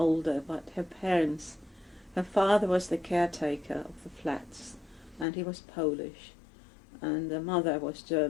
but her father was the caretaker of the flats, and he was Polish, and the mother was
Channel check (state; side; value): drops out; right; at 5.2 s